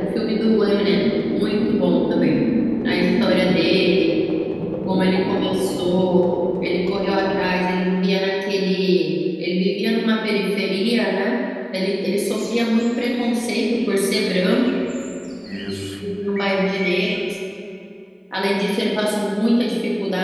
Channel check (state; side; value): identical; both; correlation 1.00